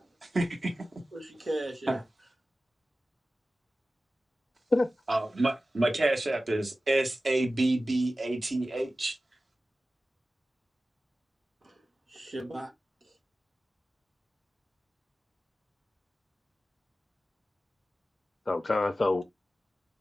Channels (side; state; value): both; normal; correlation 0.95